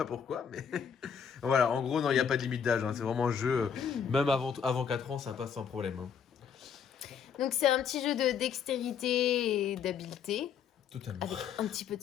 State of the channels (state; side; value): quieter; right; 7.3 dB